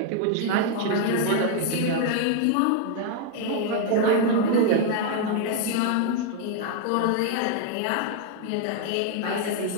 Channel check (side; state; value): both; different; correlation 0.00